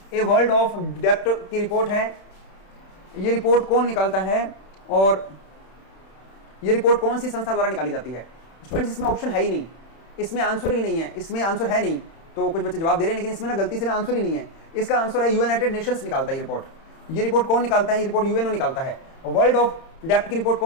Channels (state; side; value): late; right; 31 ms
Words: ए वर्ल्ड ऑफ डेप्थ की रिपोर्ट है। ये रिपोर्ट कौन निकालता है और ये रिपोर्ट कौन सी संस्था द्वारा निकाली जाती है? स्टूडेंट्स, इसमें ऑप्शन है ही नहीं, इसमें आंसर ही नहीं है। इसमें आंसर है नहीं, तो कुछ बच्चे जवाब दे रहे हैं, लेकिन इसमें ना गलती से ना आंसर ही नहीं है। इसका आंसर है यूनाइटेड नेशंस निकालता है ये रिपोर्ट। ये रिपोर्ट कौन निकालता है? ये रिपोर्ट यूएनओ निकालता है। वर्ल्ड ऑफ डेप्थ की रिपोर्ट